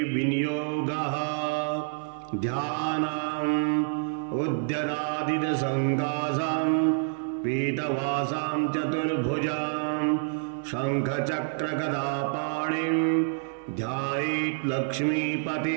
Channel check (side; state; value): left; silent; digital silence